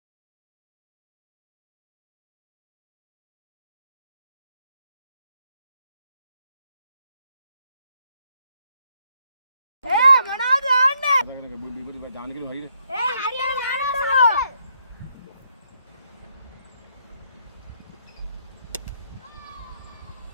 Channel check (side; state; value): both; inverted; correlation -0.75